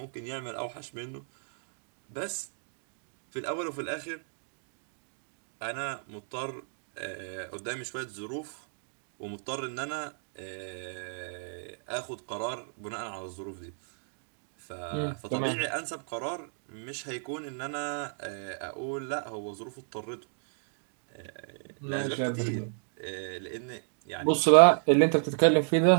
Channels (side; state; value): left; silent; digital silence